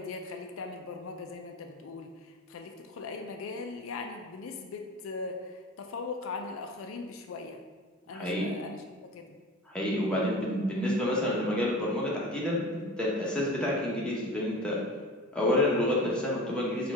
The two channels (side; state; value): both; normal; correlation 0.36